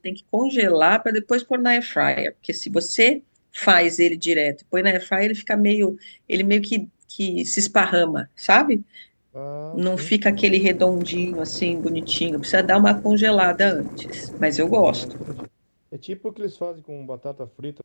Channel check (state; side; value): inverted; both; correlation -1.00